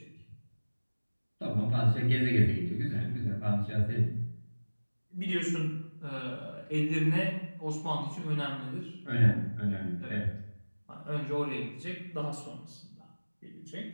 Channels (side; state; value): both; inverted; correlation -1.00